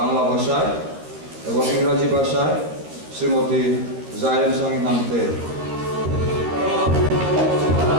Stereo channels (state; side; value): late; left; 13 ms